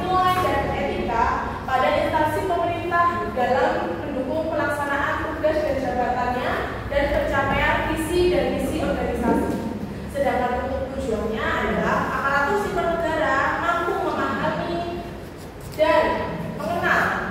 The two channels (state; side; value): identical; both; correlation 1.00